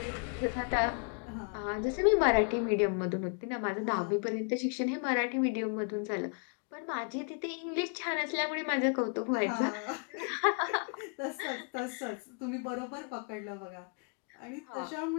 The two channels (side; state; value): right; quieter; 38.9 dB